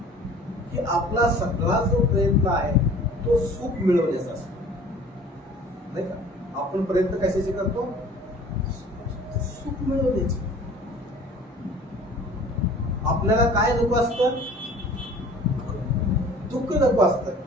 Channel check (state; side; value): normal; both; correlation 0.47